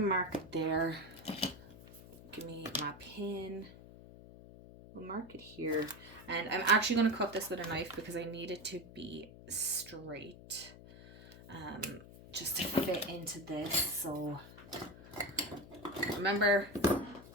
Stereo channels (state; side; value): noise; left; hum, 17 dB below the sound